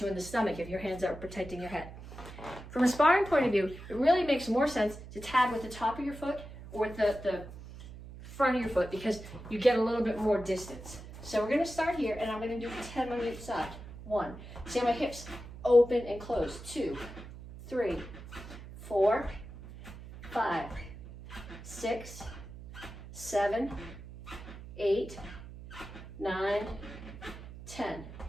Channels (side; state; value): right; noise; hum, 14 dB below the sound